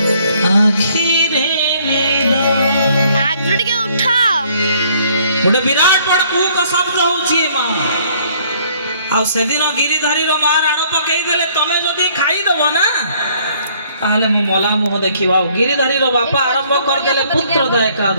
आखिरे गोटे विराट बड़ कूक शब्द होची माँ आ ଆଉ ସେଦିନ ଗିରିଧାରୀର ମା ରାଣ ପକେଇ ଦେଲେ ତମେ ଯଦି ଖାଇଦବ ନା ତାହେଲେ ମୁଁ ମଲା ମୁହଁ ଦେଖିବ। ଆଉ ଗିରିଧାରୀର ବାପା ଆରମ୍ଭ କରିଦେଲେ ପୁତ୍ରଦା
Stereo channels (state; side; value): inverted; both; correlation -0.62